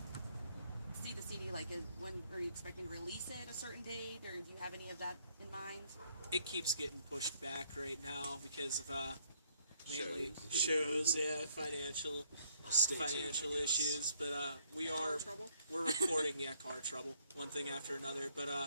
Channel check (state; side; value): inverted; both; correlation -0.67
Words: see the CD? Like, when are you expecting to release it at a certain date, or do you have any of that in mind? it keeps getting pushed back right now because of mainly shows, yeah, financial issues. But Car trouble. we're recording, yeah, car trouble, one thing after another.